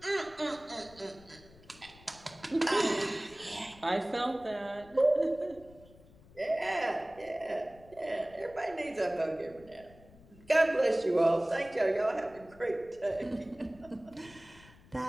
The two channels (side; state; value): left; noise; rumble, 23 dB below the sound